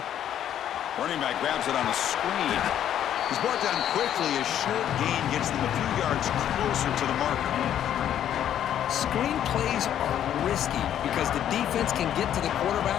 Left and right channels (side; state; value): right; quieter; 10.5 dB